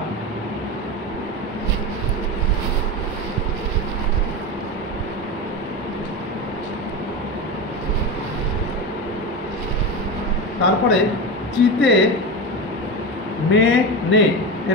তারপরে চিতে মেনে,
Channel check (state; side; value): normal; both; correlation 0.21